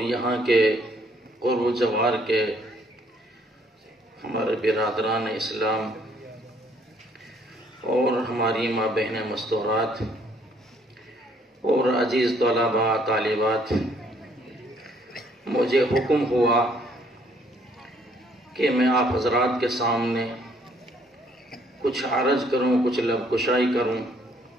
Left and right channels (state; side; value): normal; both; correlation 0.65